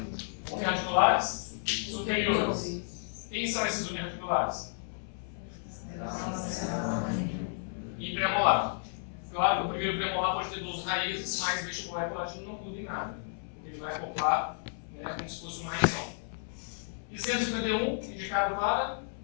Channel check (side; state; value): right; silent; 56 dB below the other